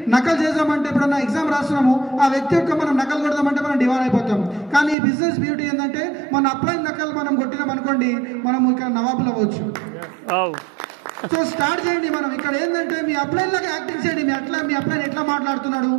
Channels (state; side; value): drops out; left; at 5.0 s